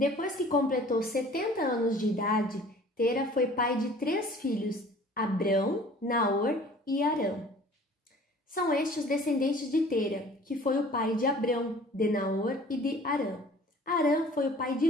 que completou 70 anos de idade, Tera foi pai de 3 filhos, Abrão, Naor e Arã. São estes os descendentes de Tera, que foi o pai de Abrão, de Naor e de Arã. Arã foi o pai de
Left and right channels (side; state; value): both; normal; correlation 0.49